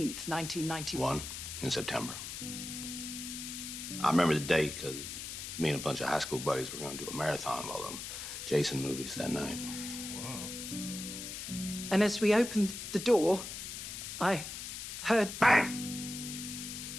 1991. In September. I remember the date because me and a bunch of high school buddies were going to do a marathon of all them Jason movies that night. And as we opened the door, I heard bang.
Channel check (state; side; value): noise; left; hiss, 7 dB below the sound